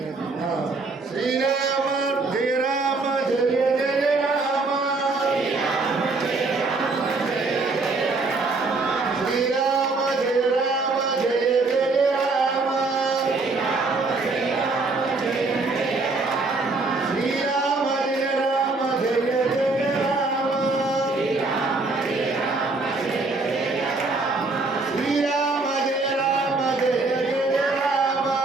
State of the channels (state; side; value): quieter; left; 3.6 dB